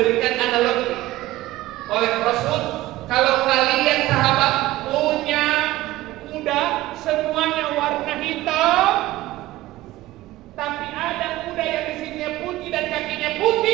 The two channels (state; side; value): quieter; left; 16.8 dB